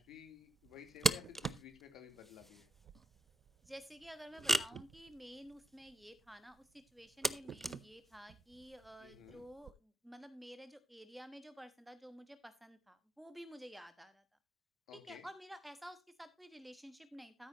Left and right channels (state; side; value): normal; both; correlation 0.85